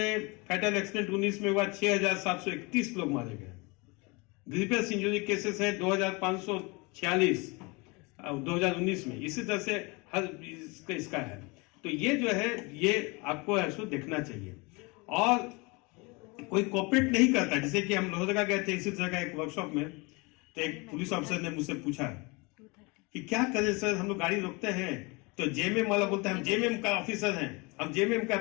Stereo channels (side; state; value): right; quieter; 27.5 dB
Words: फैटल एक्सीडेंट 19 में हुआ 6,731 लोग मारे गए। ग्रीवियस इंजरी केसेस हैं 2,546 2019 में। इसी तरह से हर इसका है। तो ये जो है ये आपको ऐसा देखना चाहिए। और कोई कोऑपरेट नहीं करता, जैसे कि हम लोहरदगा गए थे इसी तरह का एक वर्कशॉप में, तो एक पुलिस ऑफिसर ने मुझसे पूछा कि क्या करें सर, हम लोग गाड़ी रोकते हैं तो जेएमएम वाला बोलता है हम जेएमएम का ऑफिसर हैं, हम जेएमएम का